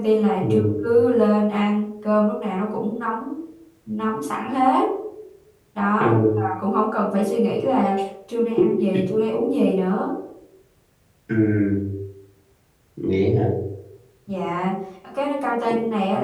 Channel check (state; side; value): identical; both; correlation 1.00